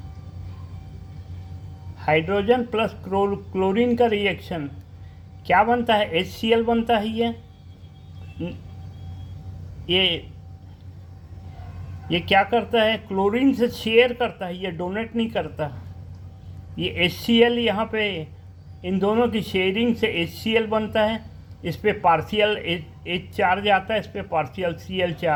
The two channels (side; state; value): both; identical; correlation 1.00